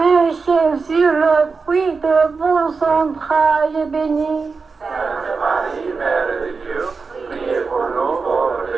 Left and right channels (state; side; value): quieter; left; 4.6 dB